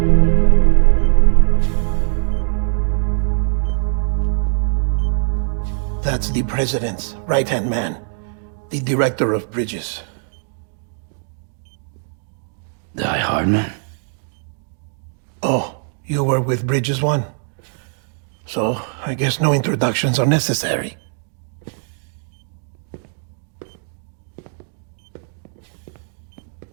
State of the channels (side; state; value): left; silent; digital silence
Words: That's the President's right-hand man, the Director of Bridges. Die Hard man? Oh, you were with Bridges 1? So, I guess no introductions are necessary.